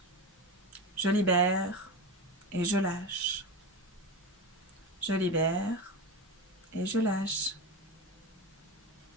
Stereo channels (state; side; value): normal; both; correlation 0.20